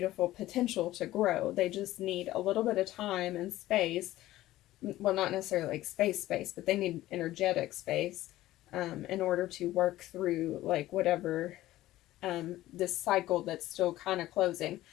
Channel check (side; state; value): right; quieter; 15.6 dB